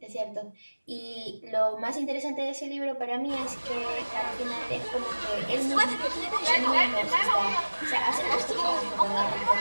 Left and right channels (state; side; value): inverted; both; correlation -1.00